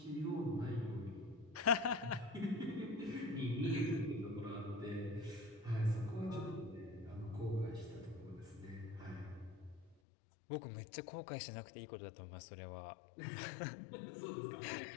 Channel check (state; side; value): drops out; right; at 10.0 s